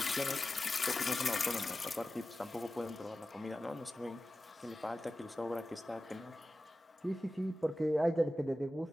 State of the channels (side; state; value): both; normal; correlation 0.94